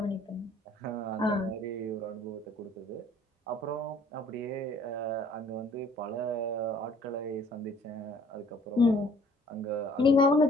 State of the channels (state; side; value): normal; both; correlation 0.56